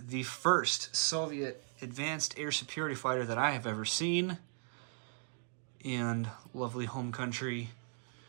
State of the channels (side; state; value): left; silent; 53 dB below the other